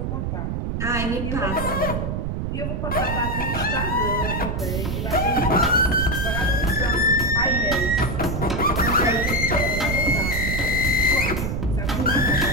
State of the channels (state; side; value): noise; right; rumble, 2 dB below the sound